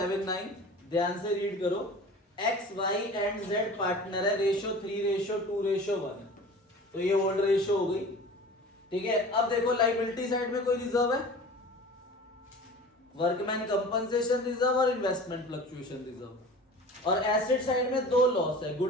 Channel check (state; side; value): normal; both; correlation 0.39